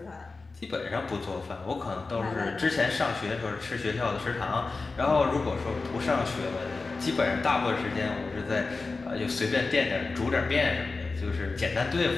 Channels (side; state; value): right; quieter; 3.9 dB